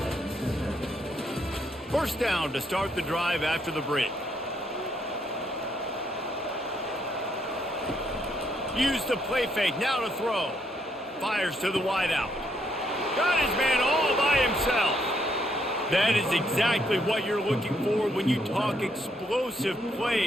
First down to start the drive after the break. Used the play fake, now to throw. Fires to the wideout. Got his man all by himself. That is exactly what you're looking for when you talk explosive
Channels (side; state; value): both; normal; correlation 0.74